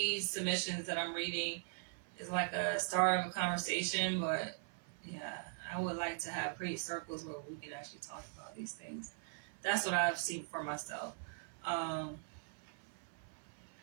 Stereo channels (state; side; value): silent; left; 51 dB below the other